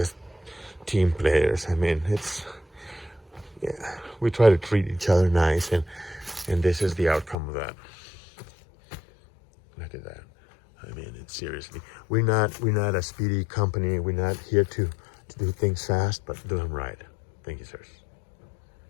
team players. I mean, we try to treat each other nice, and this is the outcome of that. Look at that. I mean, it's seriously, we're not a speedy company. We're not here to do things fast, but do them right. Thank you, sirs.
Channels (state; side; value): drops out; right; at 7.4 s